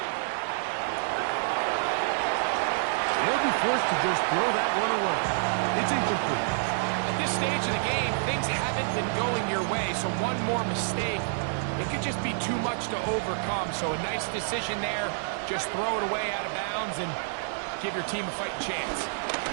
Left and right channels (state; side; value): silent; left; 59 dB below the other